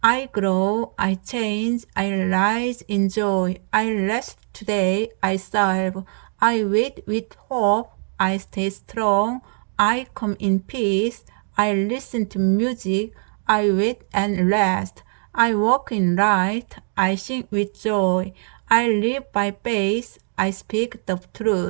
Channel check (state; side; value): silent; left; 64 dB below the other